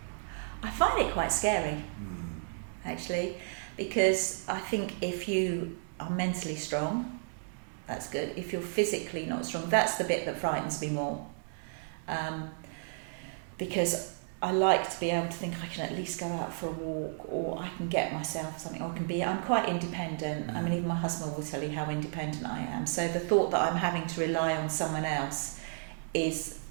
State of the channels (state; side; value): silent; left; 56 dB below the other